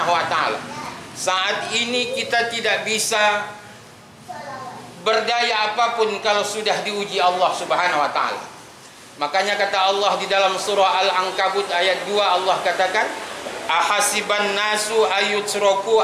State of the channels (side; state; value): both; identical; correlation 1.00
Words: wa taala, saat ini kita tidak bisa berdaya apapun kalau sudah diuji Allah Subhanahu wa taala. Makanya kata Allah di dalam surah Al-Ankabut ayat 2, Allah katakan, ahasiban nasu